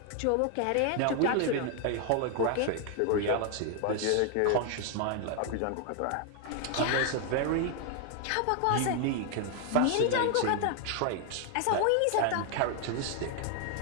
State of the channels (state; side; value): different; both; correlation 0.00